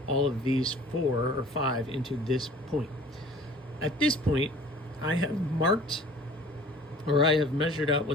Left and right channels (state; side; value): normal; both; correlation 0.47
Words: all of these 4 or 5 into this point. At this point, I have marked, or I have measured out